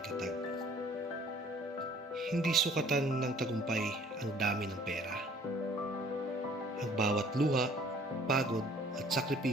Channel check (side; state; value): both; normal; correlation 0.55